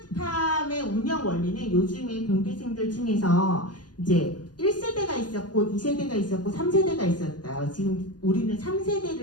운영 원리는 요즘에 공대생들 중에서 이제 1세대가 있었고 2세대가 있었고 3세대가 있었어요. 지금 우리는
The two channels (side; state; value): right; late; 0.70 ms